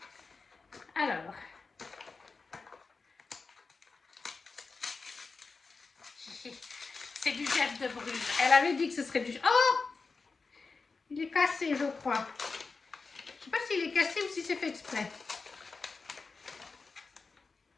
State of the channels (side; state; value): right; quieter; 4.3 dB